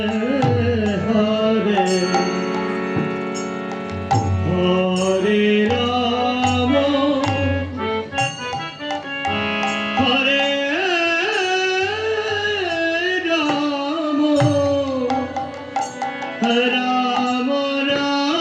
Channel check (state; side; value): identical; both; correlation 1.00